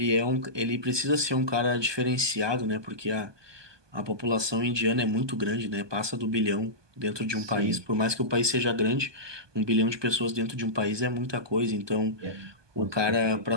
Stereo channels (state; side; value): late; left; 1.2 ms